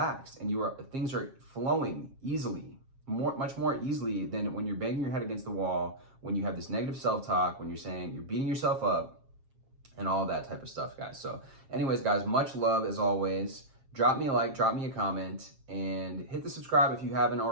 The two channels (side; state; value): left; late; 7.4 ms